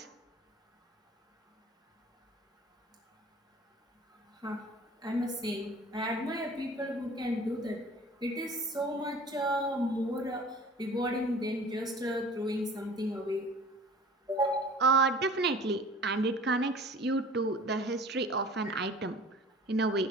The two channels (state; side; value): normal; both; correlation 0.45